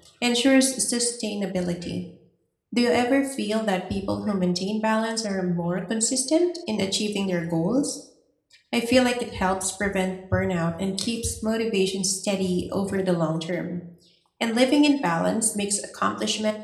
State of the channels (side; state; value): both; identical; correlation 1.00